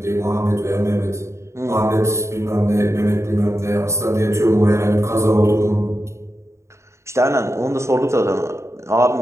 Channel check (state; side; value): late; left; 0.14 ms